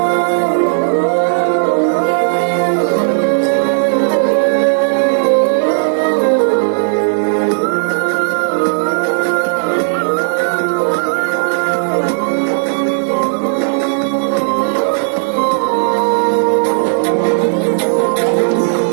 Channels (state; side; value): silent; left; digital silence